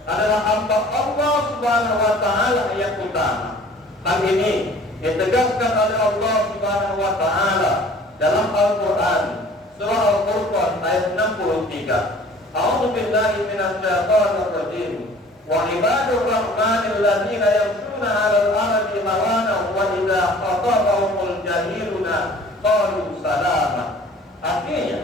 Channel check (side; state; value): both; normal; correlation 0.49